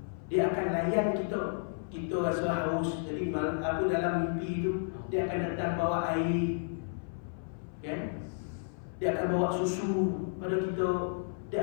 Dia akan layan kita. Kita rasa haus, jadi aku dalam mimpi tu, dia akan datang bawa air, kan? Dia akan bawa susu pada kita,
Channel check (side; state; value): right; silent; 56 dB below the other